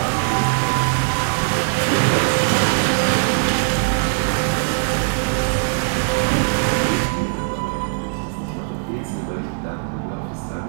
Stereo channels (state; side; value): silent; left; digital silence